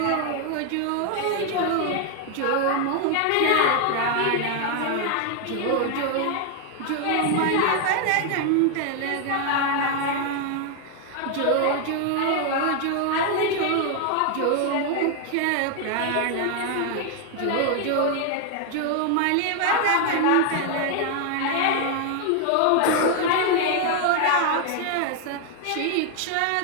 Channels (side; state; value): both; different; correlation 0.00